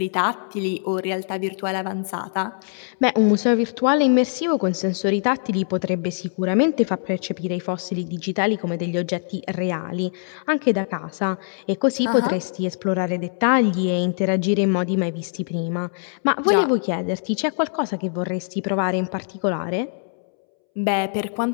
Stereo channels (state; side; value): silent; right; 64 dB below the other